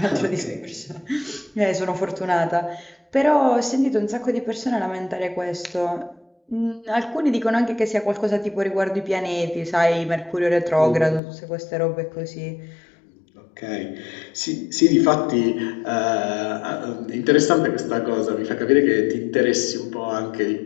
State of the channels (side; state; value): right; drops out; at 11.2 s